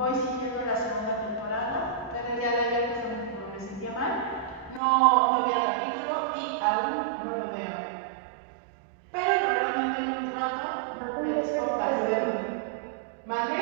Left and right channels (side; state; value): left; drops out; at 4.8 s